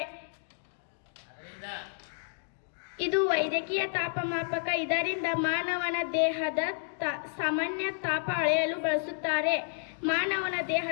ಇದು ವೈದ್ಯಕೀಯ ತಾಪಮಾಪಕ. ಇದರಿಂದ ಮಾನವನ ದೇಹದ ಸಾಮಾನ್ಯ ತಾಪ ಅಳೆಯಲು ಬಳಸುತ್ತಾರೆ. ಮಾನವನ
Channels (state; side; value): silent; right; digital silence